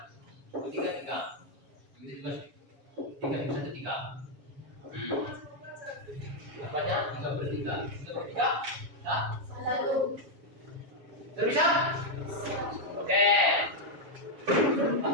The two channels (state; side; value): late; left; 7.2 ms